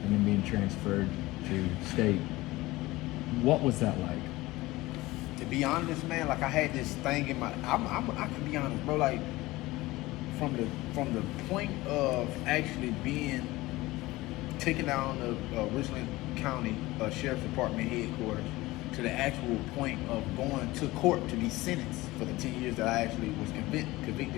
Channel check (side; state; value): right; quieter; 19.4 dB